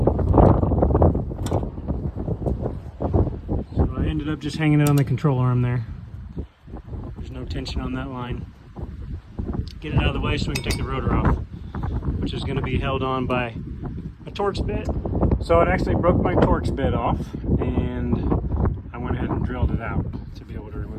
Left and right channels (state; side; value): identical; both; correlation 1.00